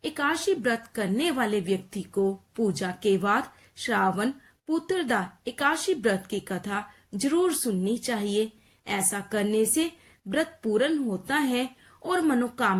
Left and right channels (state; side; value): identical; both; correlation 1.00